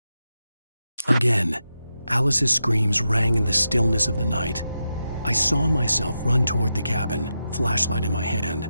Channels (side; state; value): both; inverted; correlation -0.88